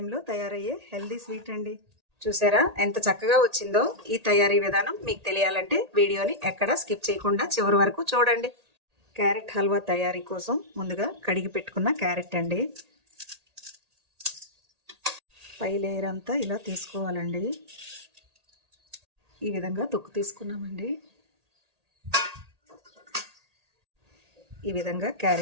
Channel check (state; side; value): late; left; 1.8 ms